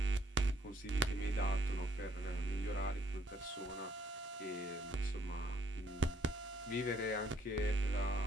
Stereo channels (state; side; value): normal; both; correlation 0.67